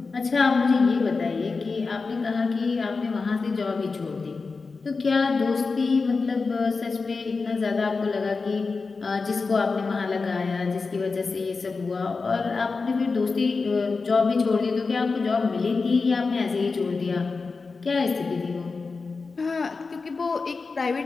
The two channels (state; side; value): quieter; right; 4.3 dB